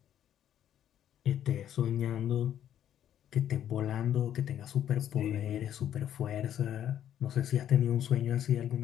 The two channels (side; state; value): right; quieter; 10.5 dB